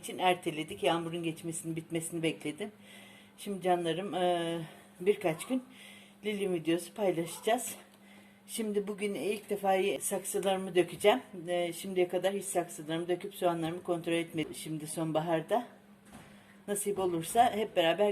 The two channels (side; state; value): both; identical; correlation 1.00